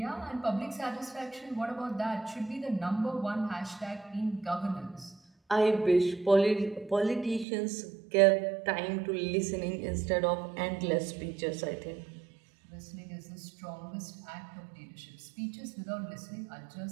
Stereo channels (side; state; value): left; drops out; at 7.5 s